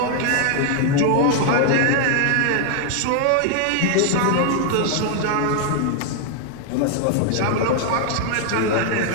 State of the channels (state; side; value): different; both; correlation 0.00